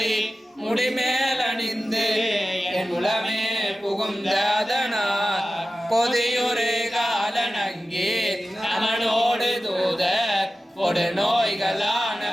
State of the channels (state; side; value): normal; both; correlation 0.94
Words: முடிமேல் அணிந்து என் உளமே புகுந்த அதனால் பொதியொரு காலனங்கி அவனோடு தூதர் கொடு நோய்களான